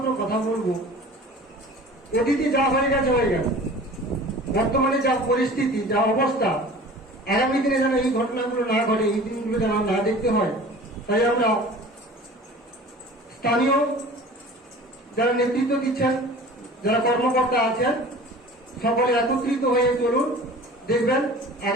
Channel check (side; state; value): both; normal; correlation 0.42